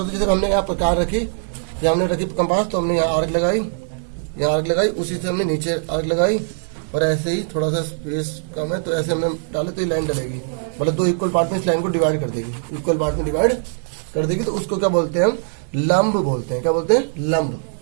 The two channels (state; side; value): silent; left; digital silence